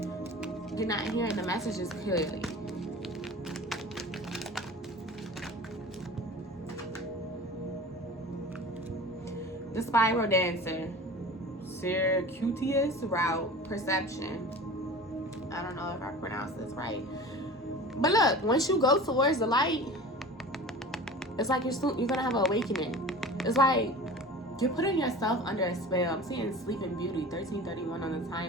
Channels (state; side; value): normal; both; correlation 0.37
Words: you're not hearing the messages clearly. The spiral dancer, circuitous route, perception. I don't know if I pronounced this right. But look, once you go towards the light, it's like you're gonna have an awakening. It's like you're putting yourself under a spell. I'm seeing Sleeping Beauty, 13:31 on the